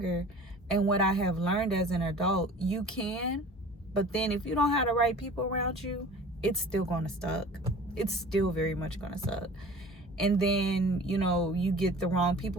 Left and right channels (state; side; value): normal; both; correlation 0.43